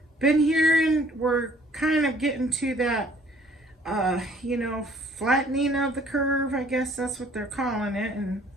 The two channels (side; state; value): both; normal; correlation 0.58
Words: been hearing we're kind of getting to that flattening of the curve, I guess that's what they're calling it, and